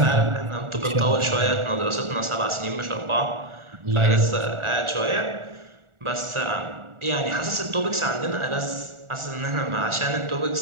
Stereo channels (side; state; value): left; late; 1.4 ms